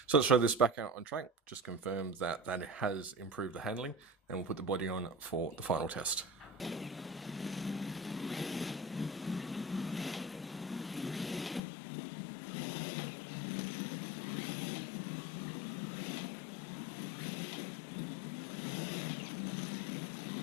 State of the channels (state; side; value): drops out; right; at 11.6 s